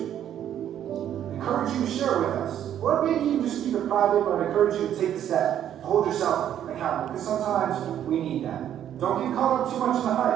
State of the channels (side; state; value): left; quieter; 10.5 dB